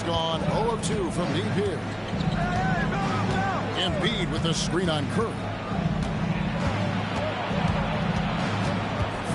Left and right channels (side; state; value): both; identical; correlation 1.00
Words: gone 0 of 2 from deep here. Embiid with a screen on Curry.